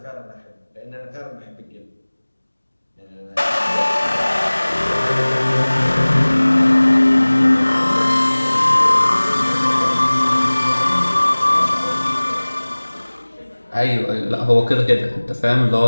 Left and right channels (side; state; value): both; inverted; correlation -1.00